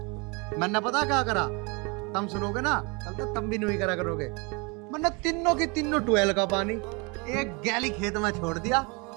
मैंने पता क्या करा, तुम सुनोगे ना कल तक तुम भी नहीं करा करोगे। मैंने तीनों की तीनों ट्वेल का पानी एक गैली खेत में छोड़ दिया,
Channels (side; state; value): left; quieter; 29.5 dB